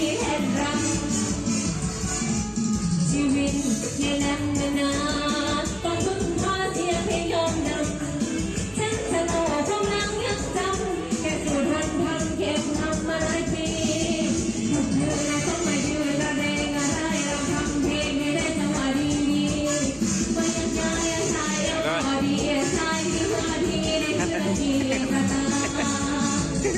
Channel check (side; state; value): both; identical; correlation 1.00